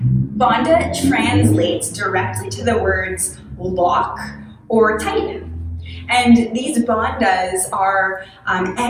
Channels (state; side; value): identical; both; correlation 1.00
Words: Bandha translates directly to the words lock or tighten. And these bandhas are